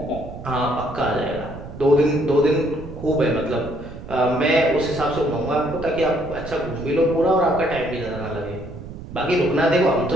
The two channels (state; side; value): noise; right; rumble, 13 dB below the sound